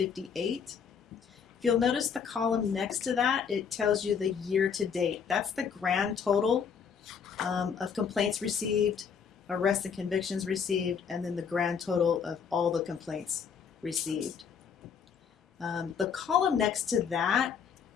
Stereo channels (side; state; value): right; quieter; 6.8 dB